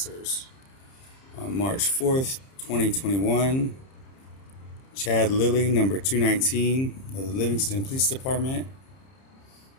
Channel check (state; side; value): late; right; 30 ms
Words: On March 4th, 2021, Chad Lilly, number 219 of the Livingston Police Department,